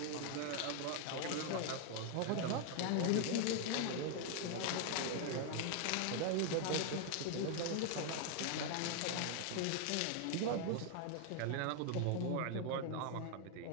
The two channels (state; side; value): different; both; correlation 0.00